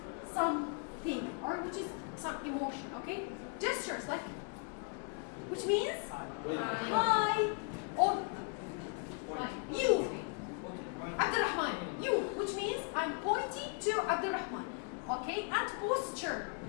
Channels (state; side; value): quieter; right; 39.1 dB